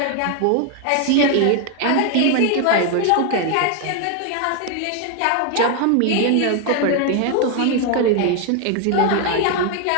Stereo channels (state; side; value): different; both; correlation 0.01